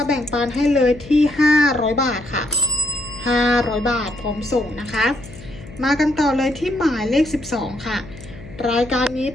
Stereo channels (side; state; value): left; noise; hum, 17 dB below the sound